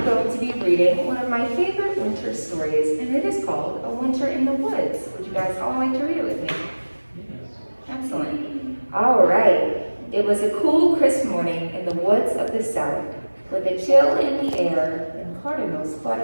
going to be reading one of my favorite winter stories, and it is called A Winter in the Woods. Would you guys all like to read it with me? Excellent. All right. It was a cool, crisp morning in the woods of the south, with a chill in the air and cardinals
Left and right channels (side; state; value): both; inverted; correlation -1.00